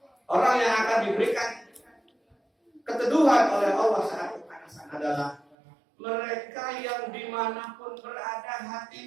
orang yang akan diberikan keteduhan oleh Allah saat kepanasan adalah mereka yang dimanapun berada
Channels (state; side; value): drops out; left; at 5.6 s